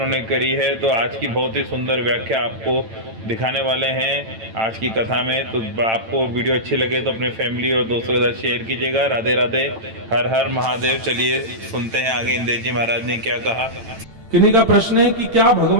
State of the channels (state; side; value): late; left; 9.0 ms